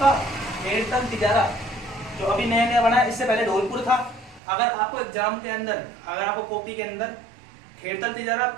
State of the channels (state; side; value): drops out; left; at 4.4 s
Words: खेड़तल तिजारा, जो अभी नया नया बना है। इससे पहले धौलपुर था। अगर आपको एग्जाम के अंदर, अगर आपको कॉपी के अंदर खेड़तल तिजारा